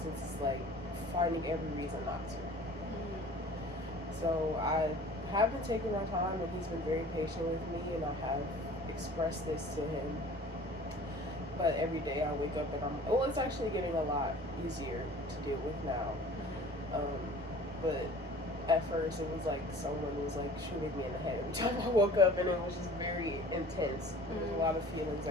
is like finding every reason not to. So I have been taking my time, and he's been very patient with me, and I have expressed this to him. But every day I wake up and it's actually getting a lot easier to deal with now. But at first it was like someone was like shooting me in the head every time I woke up, and it was just very intense. There was a lot of feelings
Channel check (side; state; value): both; normal; correlation 0.45